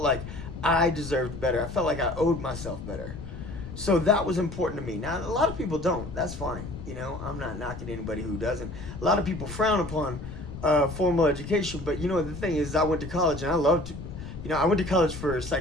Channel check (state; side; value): noise; left; rumble, 10 dB below the sound